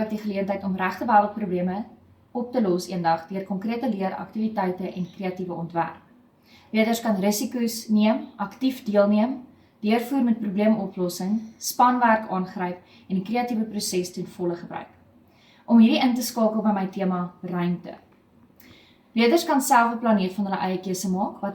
die geleentheid om regte wêreldprobleme op te los eendag deur konkrete leeraktiwiteite en kreatiewe ontwerp. Leerders kan risiko's neem, aktief deelneem, deurvoer met probleemoplossing, spanwerk aangryp en die kreatiewe proses ten volle gebruik. Om hierdie in te skakel by my tema ruimte. Leerders kan self 'n planeet van hulle eie keuse maak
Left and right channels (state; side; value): identical; both; correlation 1.00